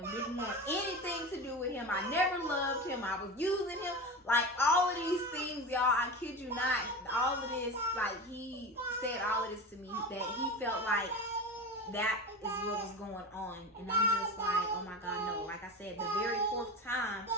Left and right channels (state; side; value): normal; both; correlation 0.26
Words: Didn't want anything to do with him. I never loved him. I was using him. Like, all of these things, y'all, I kid you not, all of this, like, he said all of this to me, that he felt like that is what was going on. And I'm just like, oh my God, no. Like I said, the very fourth time,